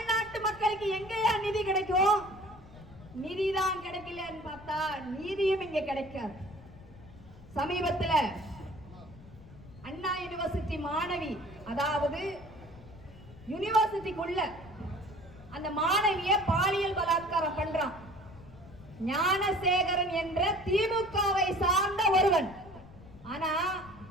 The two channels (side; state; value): left; noise; rumble, 19 dB below the sound